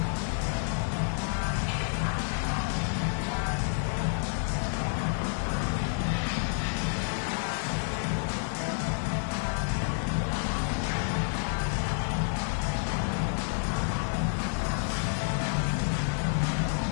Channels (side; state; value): right; silent; 58 dB below the other